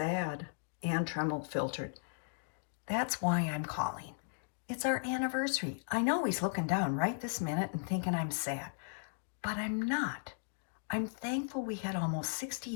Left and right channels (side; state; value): right; silent; digital silence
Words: Ann Tremmel, filtered. That's why I'm calling. It's our anniversary. I know he's looking down right this minute and thinking I'm sad. But I'm not. I'm thankful we had almost 60